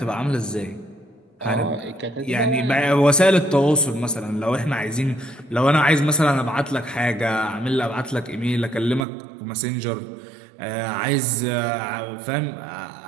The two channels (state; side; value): drops out; left; at 9.1 s